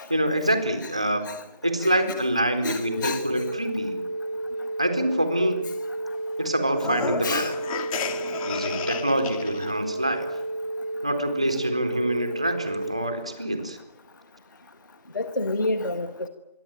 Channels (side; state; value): both; inverted; correlation -0.73